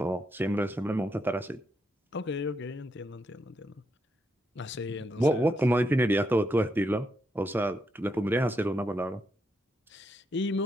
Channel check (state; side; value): normal; both; correlation 0.80